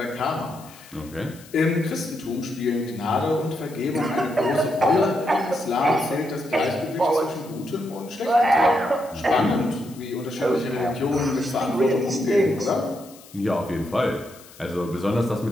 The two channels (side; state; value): left; noise; hiss, 22 dB below the sound